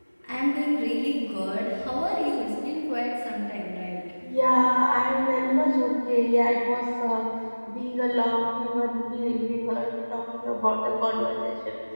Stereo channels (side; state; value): both; inverted; correlation -1.00